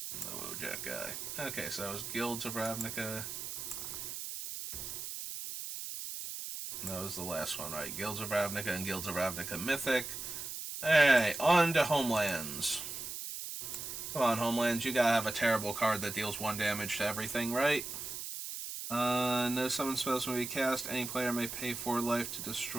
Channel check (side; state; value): right; noise; hiss, 7 dB below the sound